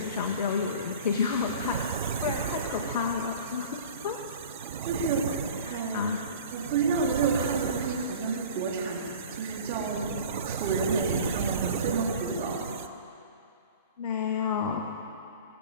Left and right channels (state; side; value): inverted; both; correlation -0.41